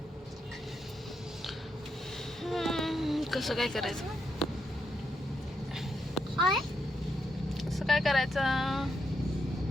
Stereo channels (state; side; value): normal; both; correlation 0.81